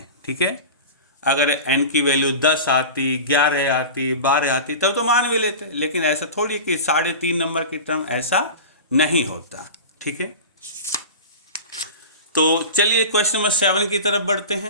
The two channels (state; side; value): inverted; both; correlation -0.31